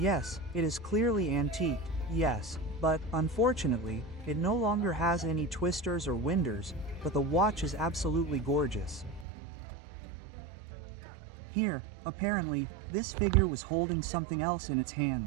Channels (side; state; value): left; drops out; at 9.2 s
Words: it is clearly antique, yes, but, unfortunately, it no longer has any twisters or winders, but the watch is absolutely gorgeous. Here, apparently, this figure was holding something else in its